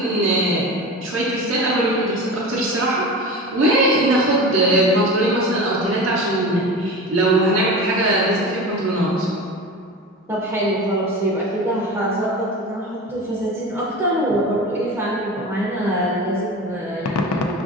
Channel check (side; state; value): both; normal; correlation 0.31